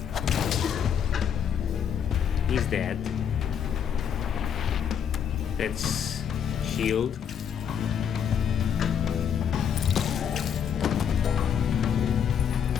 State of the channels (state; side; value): quieter; right; 8.1 dB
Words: He's dead. Let's shield.